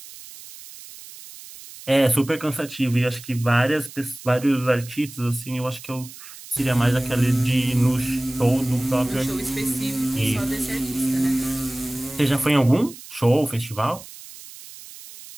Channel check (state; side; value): noise; right; hiss, 16 dB below the sound